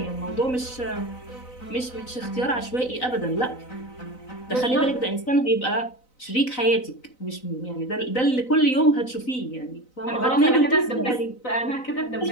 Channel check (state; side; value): late; right; 4.0 ms